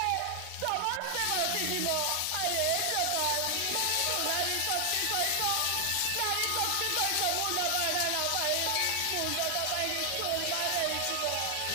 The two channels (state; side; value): different; both; correlation 0.00